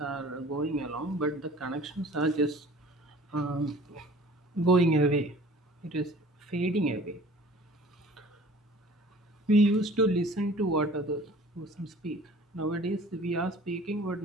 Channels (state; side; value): normal; both; correlation 0.48